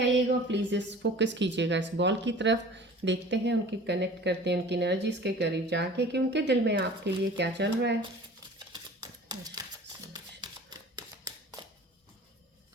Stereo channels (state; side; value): normal; both; correlation 0.44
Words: प्लीज़ इस फोकस कीजिएगा इस बॉल की तरफ। देखते हैं उनकी कनेक्ट करते हैं उनकी एनर्जीज के करीब जाके कि उनके दिल में आपके लिए क्या चल रहा है।